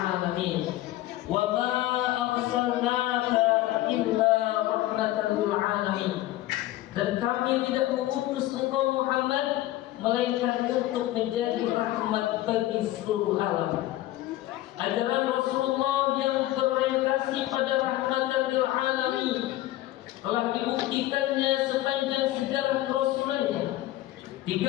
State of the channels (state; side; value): quieter; right; 15.5 dB